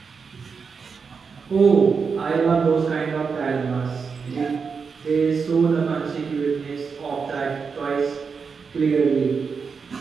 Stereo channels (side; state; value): left; quieter; 5.5 dB